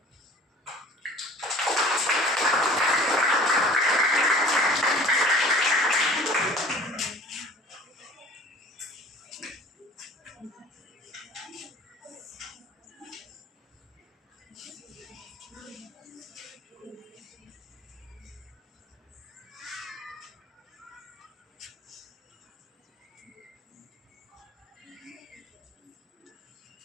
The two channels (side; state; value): both; normal; correlation 0.46